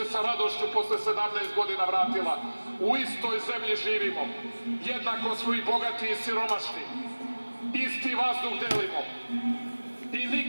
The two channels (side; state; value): both; inverted; correlation -1.00